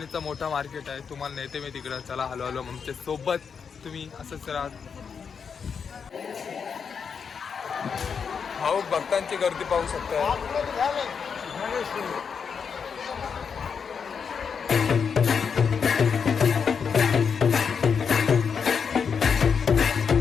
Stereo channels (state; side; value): quieter; right; 6.3 dB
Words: मोठा मार्केट आहे. तुम्हाला नेते मी तिकडं. चला हलो हलो आमच्या सोबत तुम्ही असंच राहा. भाऊ भक्तांची गर्दी पाहू शकता.